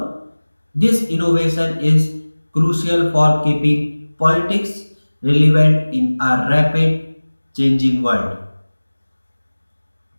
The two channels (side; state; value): both; inverted; correlation -1.00